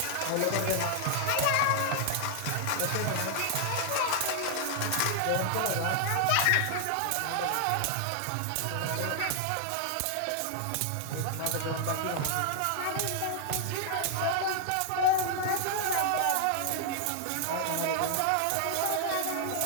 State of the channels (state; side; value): different; both; correlation 0.00